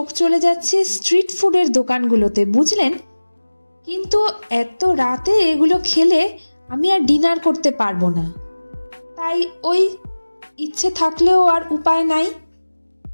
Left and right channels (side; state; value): both; inverted; correlation -1.00